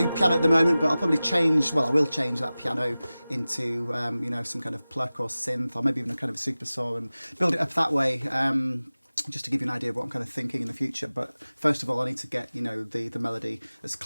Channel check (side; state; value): both; inverted; correlation -0.97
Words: piano at the moment, but I'll probably change, well, I will change that piano into, you know, some kind of pluck or synth, or maybe even a kind of a super saw, and build it up that way, just to give you an idea of what I'm kind of thinking in the future. But first of all, I need to get, you know, the melody as